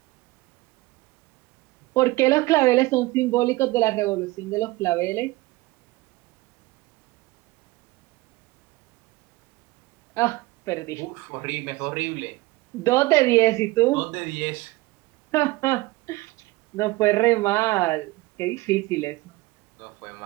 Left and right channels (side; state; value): left; quieter; 20.3 dB